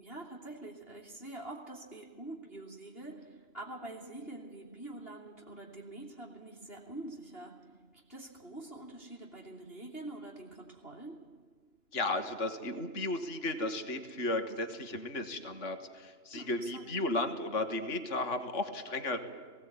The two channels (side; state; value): right; late; 2.9 ms